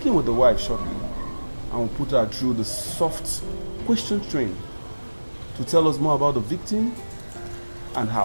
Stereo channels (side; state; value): both; inverted; correlation -1.00